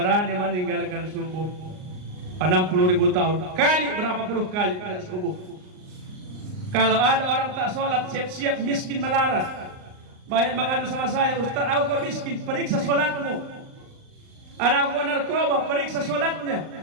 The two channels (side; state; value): left; late; 39 ms